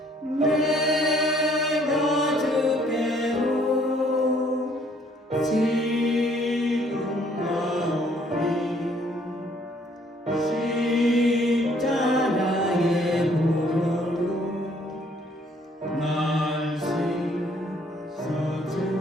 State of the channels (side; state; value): both; normal; correlation 0.63